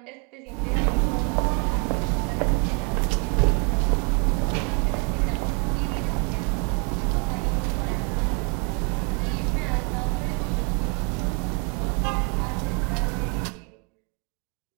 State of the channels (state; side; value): quieter; left; 35.3 dB